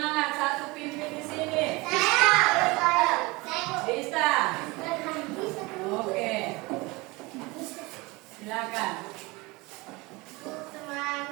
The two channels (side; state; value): left; quieter; 23.9 dB